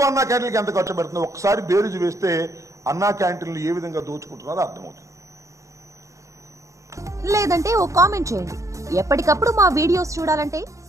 అన్నా క్యాంటీన్లకి ఎంత ఖర్చు పెడుతుంది? ఒకసారి బేరీజు వేస్తే అన్నా క్యాంటీన్లు ఏ విధంగా దోచుకుంటున్నారో అర్థమవుతుంది. లేదంటే ఓ కామెంట్ చేయండి. ఎప్పటికప్పుడు మా వీడియోస్ చూడాలంటే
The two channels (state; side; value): late; left; 0.15 ms